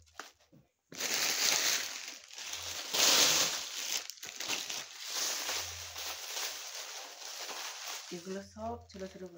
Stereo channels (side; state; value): both; identical; correlation 1.00